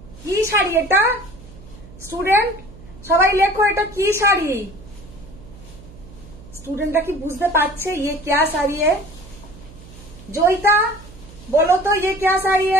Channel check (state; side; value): noise; right; hum, 19 dB below the sound